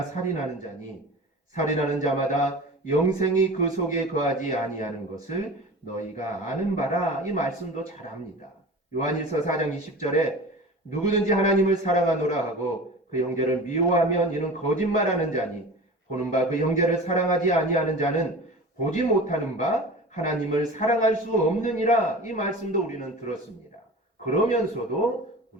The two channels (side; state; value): both; normal; correlation 0.36